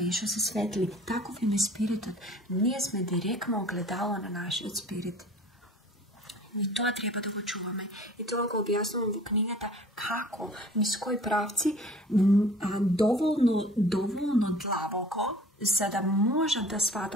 što se svetli. Takov im je spiritot. Nije sme direktno ogledalo na naš spirit. I to treba da go čuvame. I to ga objasnujem u knjigata kako, iz koji pravci, dovoljno dlaboko, za da može da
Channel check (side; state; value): both; normal; correlation 0.47